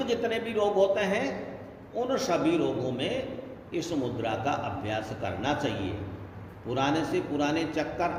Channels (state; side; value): identical; both; correlation 1.00